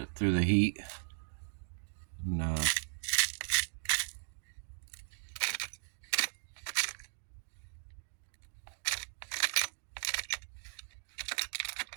through the heat. And,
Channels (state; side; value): silent; left; digital silence